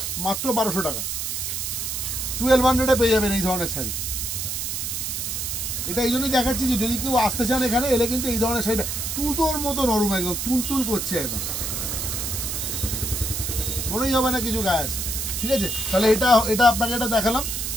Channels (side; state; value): right; noise; hiss, 3 dB below the sound